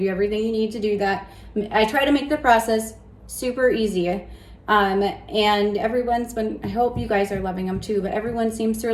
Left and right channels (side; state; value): both; identical; correlation 1.00